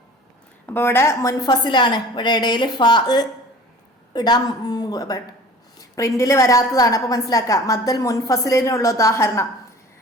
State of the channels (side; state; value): both; normal; correlation 0.44